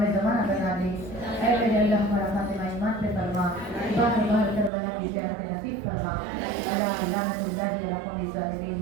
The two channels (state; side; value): drops out; left; at 4.7 s